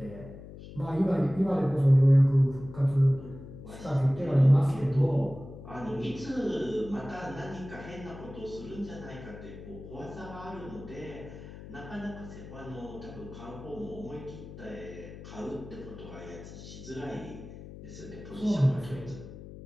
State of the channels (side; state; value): left; noise; hum, 14 dB below the sound